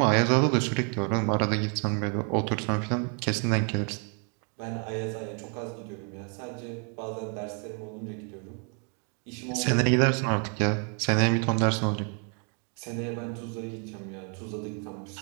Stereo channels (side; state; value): left; quieter; 39.0 dB